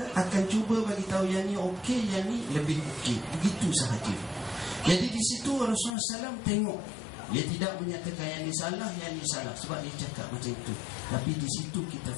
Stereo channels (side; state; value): right; drops out; at 5.9 s